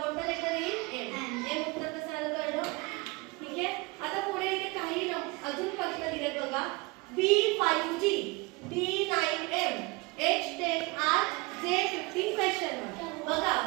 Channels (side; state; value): left; quieter; 25.6 dB